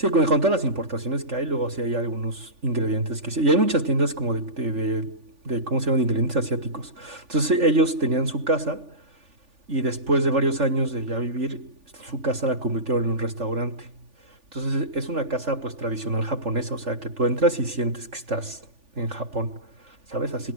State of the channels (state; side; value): late; left; 3.5 ms